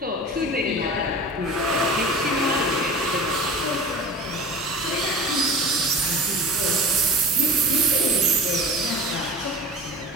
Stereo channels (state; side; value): normal; both; correlation 0.37